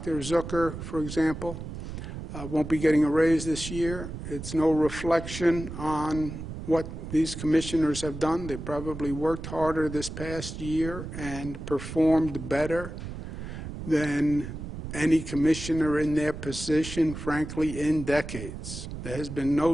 Zucker, for example, won't be getting a raise this year. It's no reflection on what these commissioners have done. They probably worked harder this past year and performed better than any commissioner in their position, frankly, in decades. There has been no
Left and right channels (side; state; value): right; noise; rumble, 9 dB below the sound